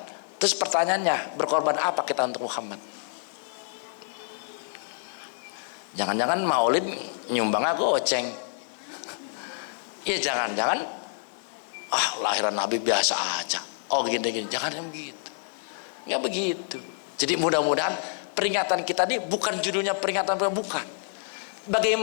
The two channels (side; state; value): right; silent; digital silence